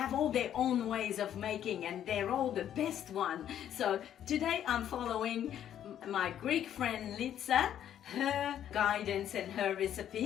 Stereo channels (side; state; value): right; quieter; 10.4 dB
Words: all their own ways of making, and they're all the best one. So today I'm following my Greek friend Litsa, her guidance and her